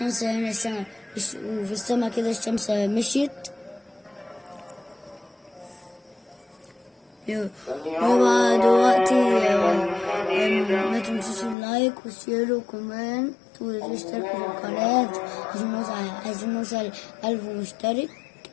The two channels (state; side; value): drops out; right; at 11.6 s